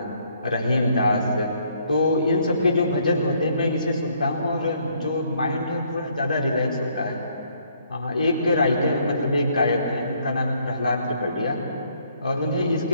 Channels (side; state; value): both; inverted; correlation -0.67